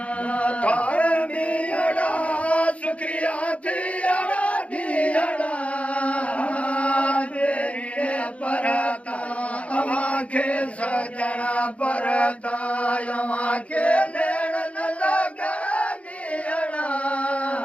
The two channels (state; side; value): late; right; 0.064 ms